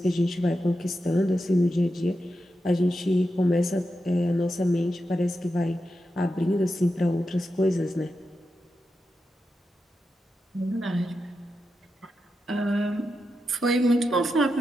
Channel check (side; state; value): both; normal; correlation 0.88